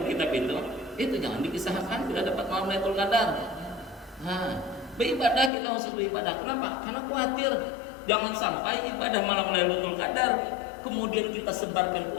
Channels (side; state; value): right; drops out; at 5.5 s